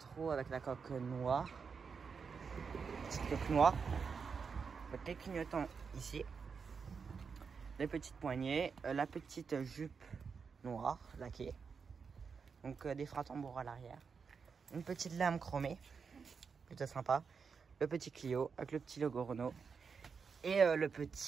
avec la coque noire. Petite coque noire. Les clignotants ici. Les petites poignées. La petite jupe noire laquée. Donc des freins tambours à l'arrière. Une petite lame chromée. Plutôt sympa. Le petit Clio avec le petit logo Renault. Et le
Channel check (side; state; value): left; quieter; 5.7 dB